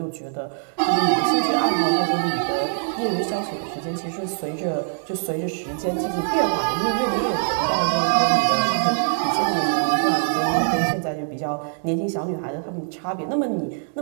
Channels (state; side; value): silent; left; digital silence